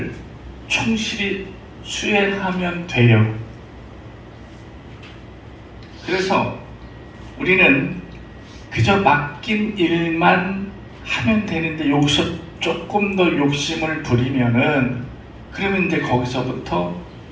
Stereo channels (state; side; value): identical; both; correlation 1.00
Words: 충실히 수행하면 돼요. 그래서 우리는 그저 맡긴 일만 하면 되는데 여기서 조금 더 욕심을 부리면은 그러면 이제 거기서부터